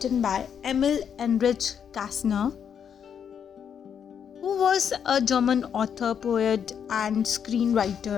by Emil Enrich Kastner, who was a German author, poet and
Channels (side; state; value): right; quieter; 7.9 dB